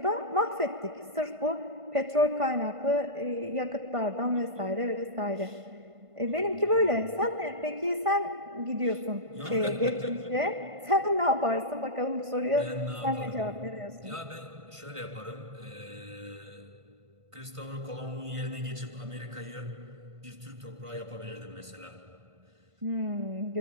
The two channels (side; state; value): left; late; 1.5 ms